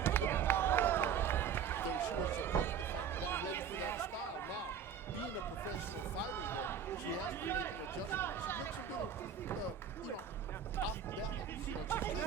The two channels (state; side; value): quieter; left; 7.5 dB